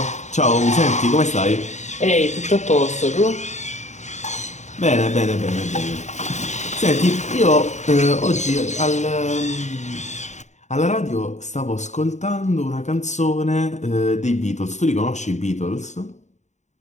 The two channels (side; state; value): right; late; 0.34 ms